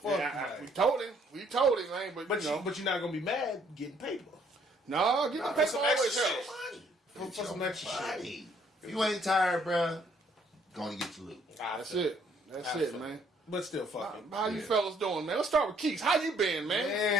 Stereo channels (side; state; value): both; normal; correlation 0.65